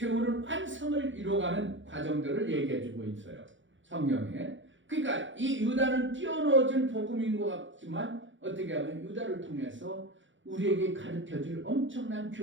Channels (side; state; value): left; late; 0.55 ms